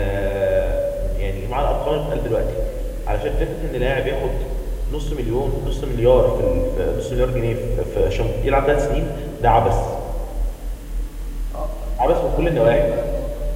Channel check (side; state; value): both; identical; correlation 1.00